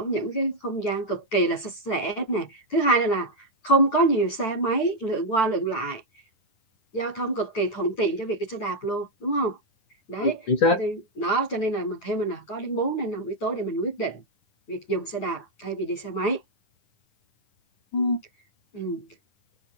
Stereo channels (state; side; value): late; right; 9.9 ms